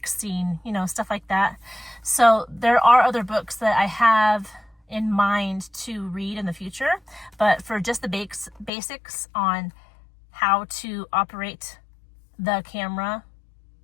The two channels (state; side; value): drops out; right; at 8.7 s